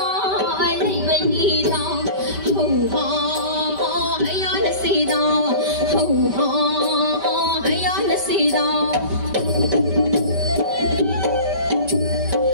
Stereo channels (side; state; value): left; late; 5.1 ms